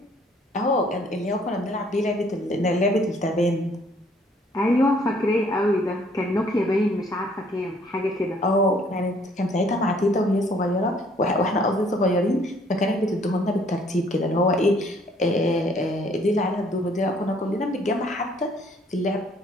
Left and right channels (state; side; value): normal; both; correlation 0.62